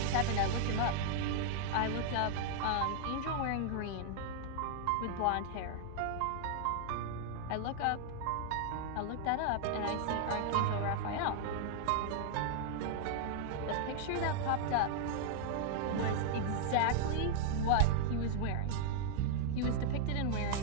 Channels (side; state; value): both; different; correlation 0.00